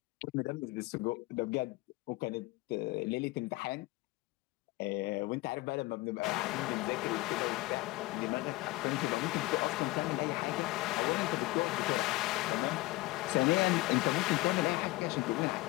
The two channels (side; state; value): right; quieter; 20.9 dB